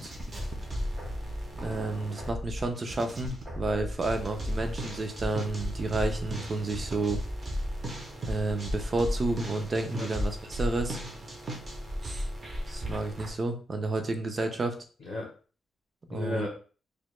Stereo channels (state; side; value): normal; both; correlation 0.84